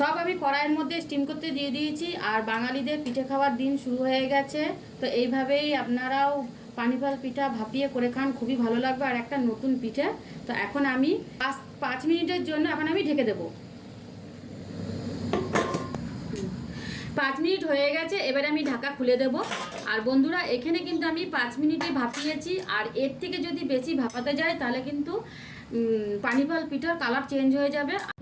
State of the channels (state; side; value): identical; both; correlation 1.00